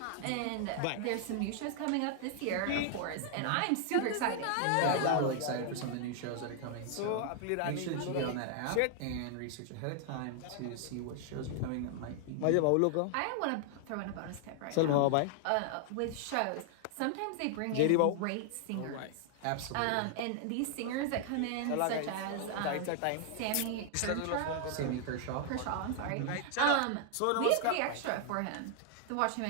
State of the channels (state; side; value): different; both; correlation 0.00